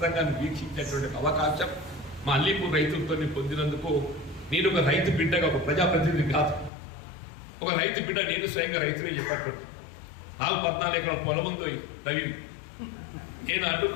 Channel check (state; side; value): drops out; right; at 6.7 s